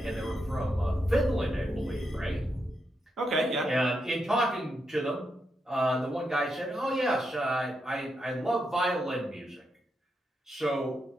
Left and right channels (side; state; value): both; normal; correlation 0.84